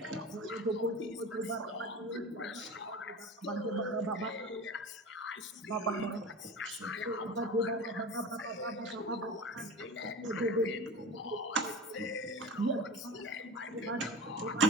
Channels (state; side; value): normal; both; correlation 0.31